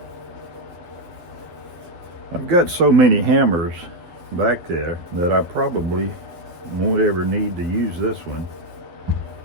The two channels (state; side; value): late; left; 11 ms